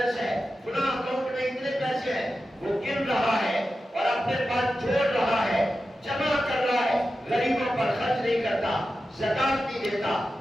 ہے، فلاں اکاؤنٹ میں اتنے پیسے ہیں، وہ گن رہا ہے اور اپنے پاس جوڑ رہا ہے، جمع کر رہا ہے، غریبوں پر خرچ نہیں کرتا، زکات نہیں دیتا،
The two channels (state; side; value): normal; both; correlation 0.92